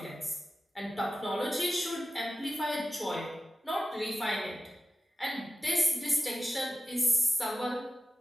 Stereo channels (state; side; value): normal; both; correlation 0.92